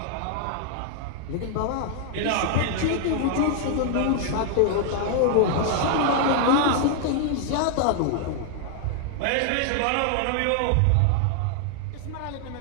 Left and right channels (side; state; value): both; different; correlation 0.00